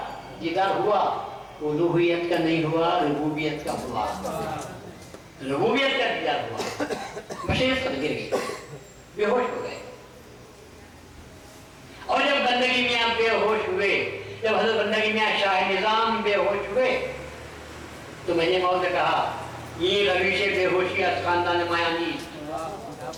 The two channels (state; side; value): identical; both; correlation 1.00